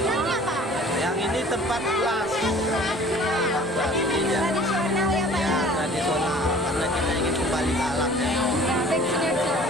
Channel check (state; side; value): normal; both; correlation 0.49